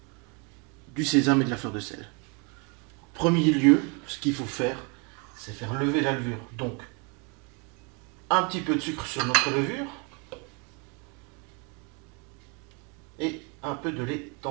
du sésame et de la fleur de sel. En premier lieu, ce qu'il faut faire, c'est faire lever la levure. Donc, un petit peu de sucre sur notre levure et un peu de lait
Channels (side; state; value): left; quieter; 33.4 dB